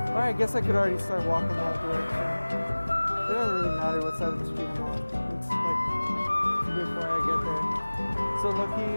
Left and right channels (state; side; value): inverted; both; correlation -1.00